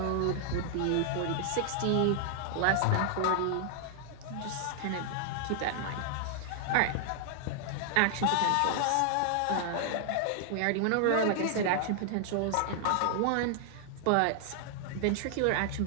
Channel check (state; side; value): different; both; correlation 0.00